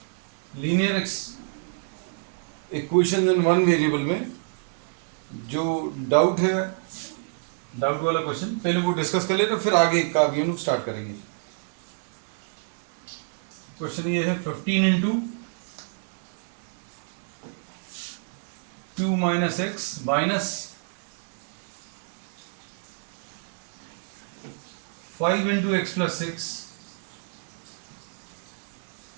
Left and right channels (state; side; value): silent; left; digital silence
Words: Linear equation in one variable में जो डाउट है, डाउट वाला क्वेश्चन पहले वो डिस्कस कर लेते, फिर आगे का भी हम स्टार्ट करेंगे। क्वेश्चन ये है 15 into 2 minus x minus 5 into x plus 6